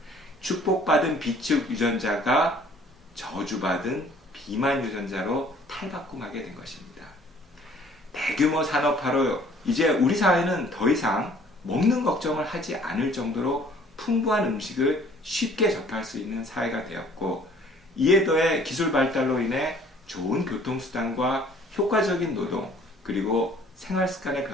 축복받은 비축 유전자가 저주받은 비만 유전자로 탈바꿈하게 된 것입니다. 대규모 산업화로 이제 우리 사회는 더 이상 먹는 걱정을 하지 않을 정도로 풍부한 음식을 쉽게 접할 수 있는 사회가 되었고, 이에 더해 기술 발달로 인해 좋은 교통수단과 효과적인 노동, 그리고 생활 습관의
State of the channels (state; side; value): normal; both; correlation 0.55